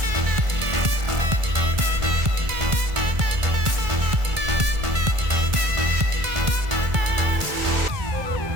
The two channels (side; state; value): left; late; 1.5 ms